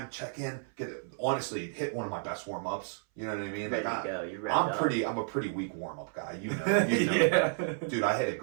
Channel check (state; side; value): silent; left; 57 dB below the other